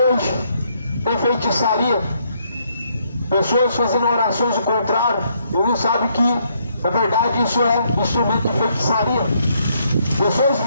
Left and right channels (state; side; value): inverted; both; correlation -0.72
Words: tem feitiçaria. Pessoas fazendo orações ao contrário e não sabem que, na verdade, isso é instrumento de feitiçaria. Pessoas